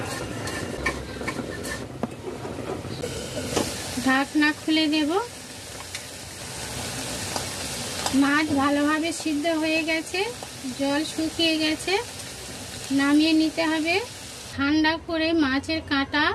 ঢাকনা খুলে দেব। মাছ ভালোভাবে সিদ্ধ হয়ে গেছে, জল শুকিয়ে গেছে, নামিয়ে নিতে হবে। ঠান্ডা করে মাছের কাঁটা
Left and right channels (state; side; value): identical; both; correlation 1.00